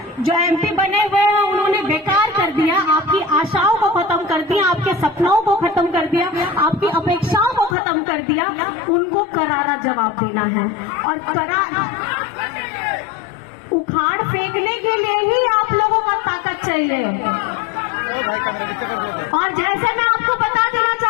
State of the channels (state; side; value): drops out; right; at 7.8 s